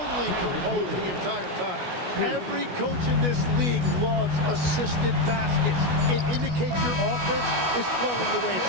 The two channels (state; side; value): late; left; 16 ms